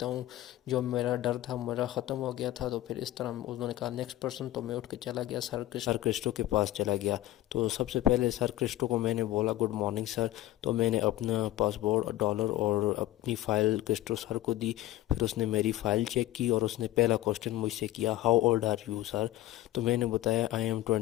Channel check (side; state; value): right; quieter; 15.2 dB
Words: ہوں، جو میرا ڈر تھا میرا ختم ہو گیا تھا۔ تو پھر اس طرح انہوں نے کہا نیکسٹ پرسن، تو میں اٹھ کے چلا گیا، سر کرسٹو کے پاس چلا گیا۔ تو سب سے پہلے سر کرسٹو کو میں نے بولا گڈ مارننگ سر۔ تو میں نے اپنا پاسپورٹ، ڈالر اور اپنی فائل کرسٹو سر کو دی۔ پھر اس نے میری فائل چیک کی اور اس نے پہلا کوسچن مجھ سے کیا how old are you sir? تو میں نے بتایا آئی ایم